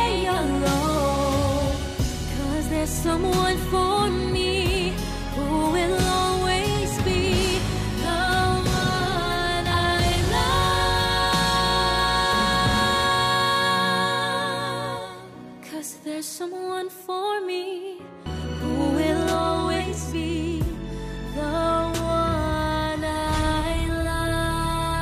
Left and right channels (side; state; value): both; identical; correlation 1.00